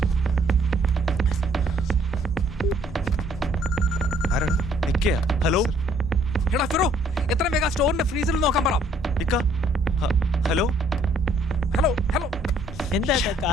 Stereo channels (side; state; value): both; normal; correlation 0.63